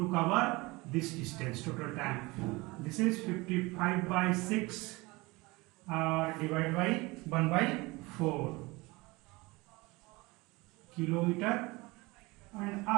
cover this distance, total time. This is 55 by 6 divided by 1 by 4 kilometer an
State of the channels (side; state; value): left; quieter; 23.4 dB